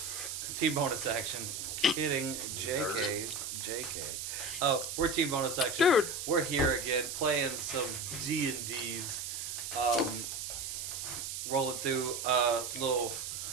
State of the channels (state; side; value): noise; right; hiss, 5 dB below the sound